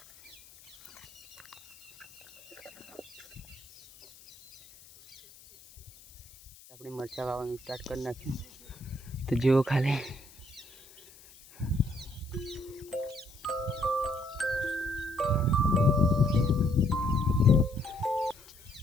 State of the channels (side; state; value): left; noise; hiss, 22 dB below the sound